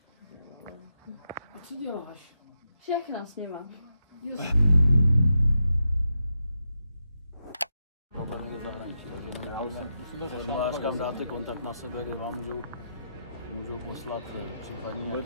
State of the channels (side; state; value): both; inverted; correlation -0.85